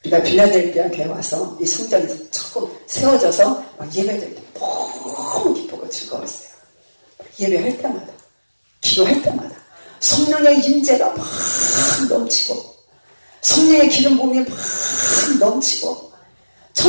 우리가 빌라델피아 교회 와서 이 성전이 조금 세워져서 막 예배드릴 때 너무 기쁘고 즐거웠어요. 예배할 때마다, 기도할 때마다 성령의 임재가 막 넘치고, 성령의 기름 부음이 막 넘치고,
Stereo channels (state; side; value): inverted; both; correlation -1.00